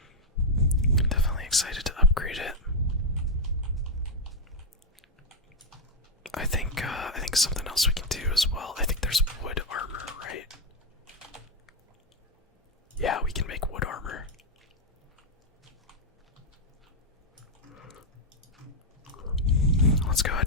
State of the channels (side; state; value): both; normal; correlation 0.01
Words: Definitely excited to upgrade it. I think something else we can do as well. I think there's wood armor, right? Yeah, we can make wood armor. Let's go